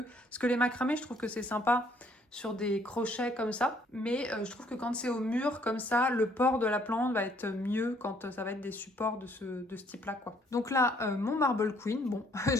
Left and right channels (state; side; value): normal; both; correlation 0.64